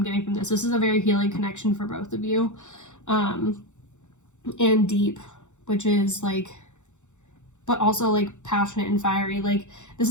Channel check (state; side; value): late; right; 0.84 ms